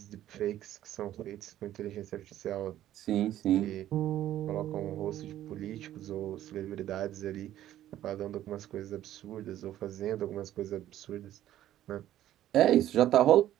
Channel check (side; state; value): left; quieter; 12.7 dB